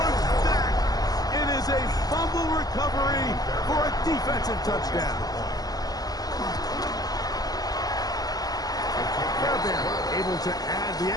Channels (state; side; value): late; right; 0.18 ms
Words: back. It is a fumble recovery for a defensive touchdown. Fairbairn able to add the